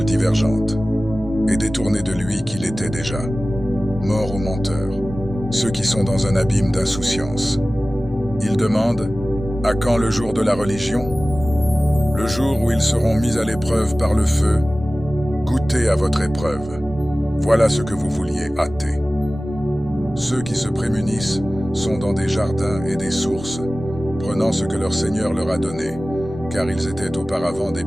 divergente et détourné de lui qu'il était déjà. Mort aux menteurs, ceux qui sont dans un abîme d'insouciance. Ils demandent « À quand le jour de la religion ?» Le jour où ils seront mis à l'épreuve par le feu. Goûtez à votre épreuve. Voilà ce que vous vouliez hâter. Ceux qui se prémunissent sont dans des jardins et des sources, prenant ce que leur Seigneur leur a donné, car ils étaient auparavant des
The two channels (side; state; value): both; normal; correlation 0.97